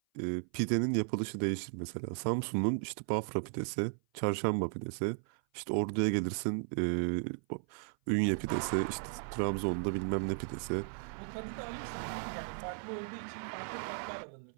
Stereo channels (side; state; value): left; silent; 54 dB below the other